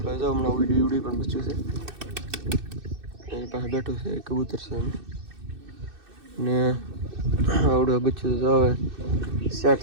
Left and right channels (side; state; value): left; late; 2.6 ms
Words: જાઓ હમણાં ઉડી પણ બચ્ચું છે એની પાસે બેઠું છે કબૂતર છે એમ ને આવડું બચ્ચું તો હવે સેટ